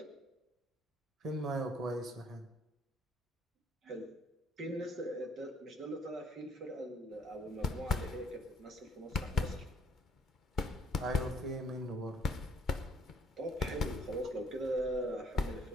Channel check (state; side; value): normal; both; correlation 0.64